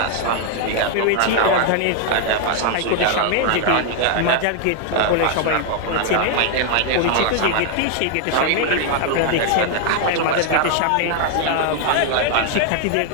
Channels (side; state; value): both; different; correlation 0.00